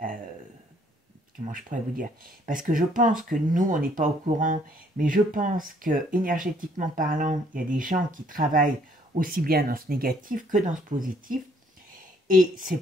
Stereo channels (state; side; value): normal; both; correlation 0.64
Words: comment je pourrais vous dire? Parce que je pense que nous, on n'est pas au courant, mais je pense que énergétiquement parlant, il y a des gens qui travaillent aussi bien dans ce négatif que dans ce positif. Et c'est